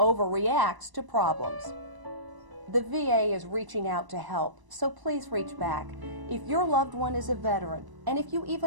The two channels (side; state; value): left; late; 1.0 ms